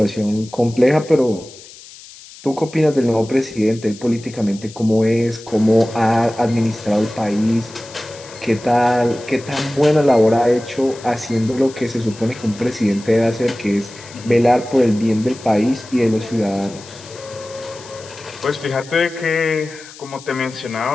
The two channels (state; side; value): noise; left; hiss, 19 dB below the sound